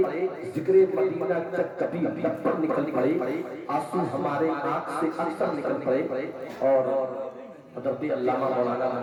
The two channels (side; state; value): both; identical; correlation 1.00